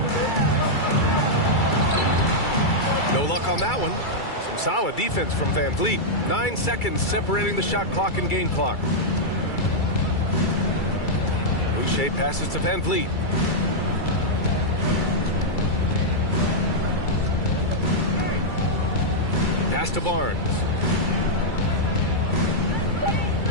No luck on that one. Some solid defense from Van Vliet. 9 seconds separating the shot clock and game clock. Boucher passes to Van Vliet. Pass to Barnes.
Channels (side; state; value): right; late; 2.3 ms